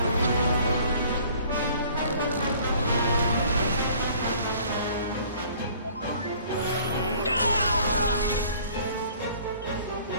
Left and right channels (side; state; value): both; inverted; correlation -0.54